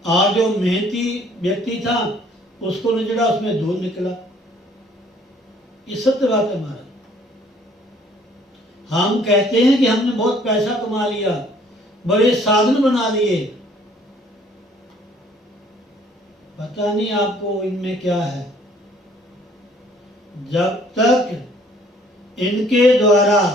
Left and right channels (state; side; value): normal; both; correlation 0.59